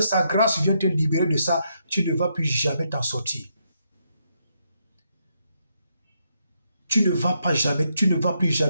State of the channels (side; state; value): both; inverted; correlation -0.78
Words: sa grâce vienne te libérer de ça, tu ne vas plus jamais t'en sortir. Tu ne vas plus